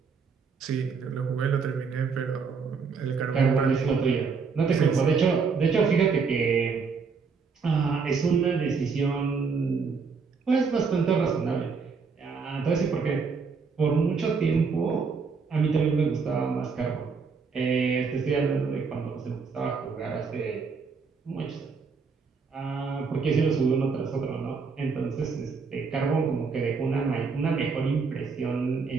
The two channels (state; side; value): quieter; left; 5.2 dB